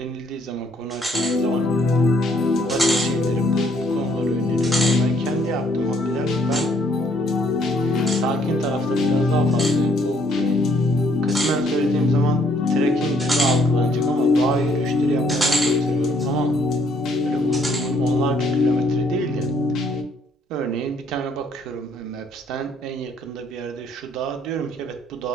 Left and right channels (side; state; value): both; normal; correlation 0.66